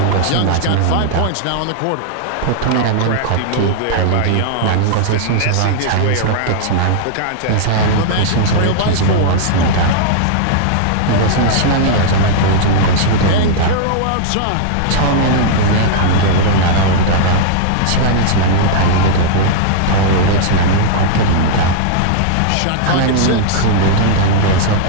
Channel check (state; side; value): different; both; correlation -0.01